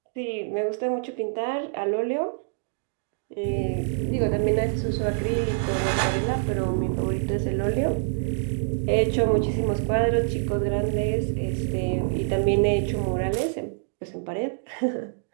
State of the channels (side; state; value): left; silent; digital silence